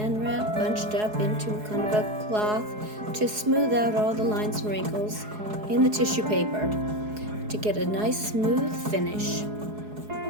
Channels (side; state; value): left; late; 4.7 ms